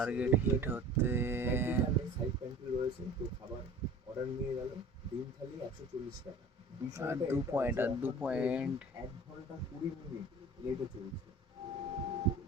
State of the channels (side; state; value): both; normal; correlation 0.42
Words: হিট হতে। সাইড প্যান্ট্রি রয়েছে, তো খাবার অর্ডার নিয়ে গেল। ডিম থালি 140 টাকা। আর 2 পয়েন্ট, আর 2 পয়েন্ট। 1 ঘন্টা 20 মিনিট লেটে চলছে।